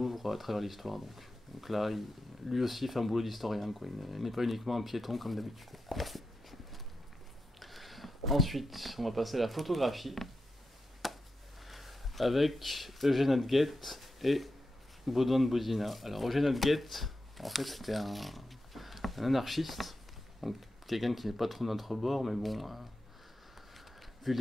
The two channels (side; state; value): both; normal; correlation 0.89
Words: à travers l'histoire. Donc là, lui aussi fait un boulot d'historien, quoi. Il n'est pas uniquement un piéton comme d'habitude. Ensuite, on va passer à la photographie avec Eugène Hadguet et Baudouin de Bodina. Alors Eugène Hadguet, en fait, c'était un anarchiste, donc quelqu'un qui n'est pas trop de notre bord, mais bon, vu